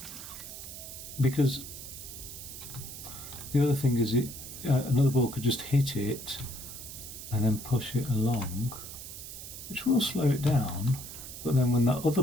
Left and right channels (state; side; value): noise; right; hiss, 11 dB below the sound